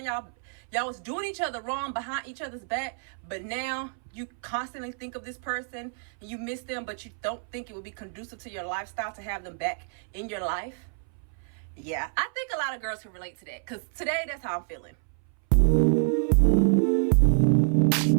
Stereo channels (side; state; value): left; silent; 59 dB below the other